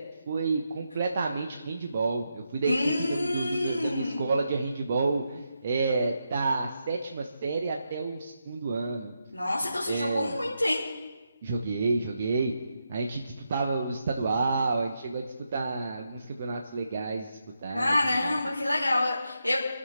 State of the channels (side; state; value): both; inverted; correlation -0.84